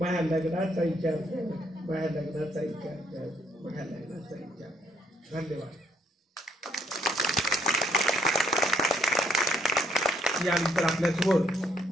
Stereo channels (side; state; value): both; normal; correlation 0.70